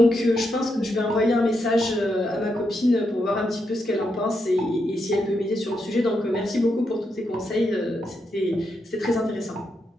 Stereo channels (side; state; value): both; normal; correlation 0.82